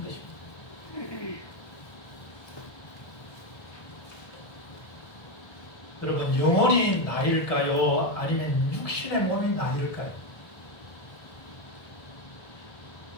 것입니다. 여러분, 영혼이 나일까요? 아니면 육신의 몸이 나일까요?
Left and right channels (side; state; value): right; late; 1.3 ms